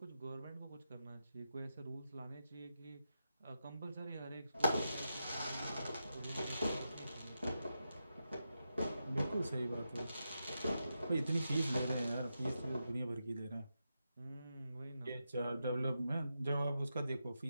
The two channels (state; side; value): inverted; both; correlation -0.88